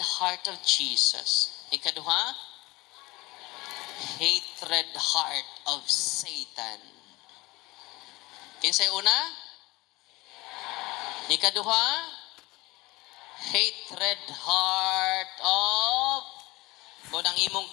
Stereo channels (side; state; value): right; quieter; 21.7 dB